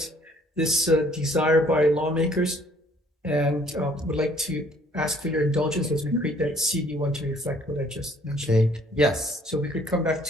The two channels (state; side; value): normal; both; correlation 0.60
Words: this desire by lawmakers. And would like to ask for your indulgence as we create that CD1 to reflect what I just mentioned. Okay, yes. So we could come back